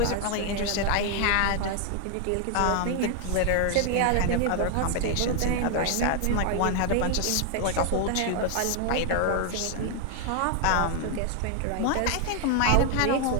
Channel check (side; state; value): both; different; correlation 0.00